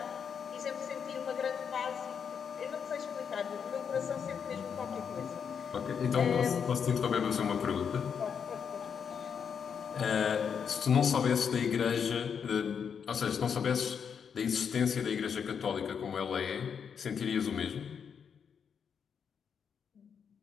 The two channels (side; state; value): right; quieter; 7.0 dB